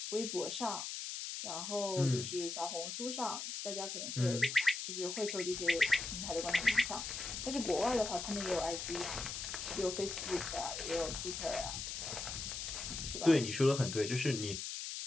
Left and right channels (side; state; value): left; noise; hiss, 5 dB below the sound